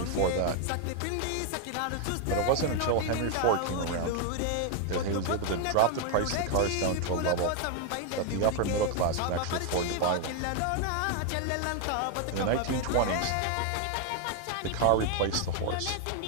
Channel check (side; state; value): both; different; correlation 0.00